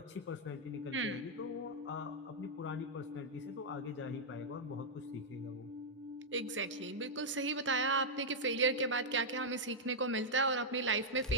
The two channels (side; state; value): both; normal; correlation -0.05